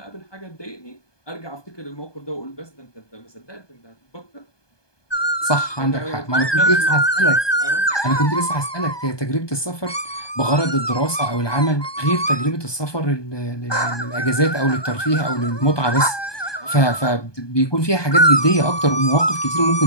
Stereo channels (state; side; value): late; right; 1.2 ms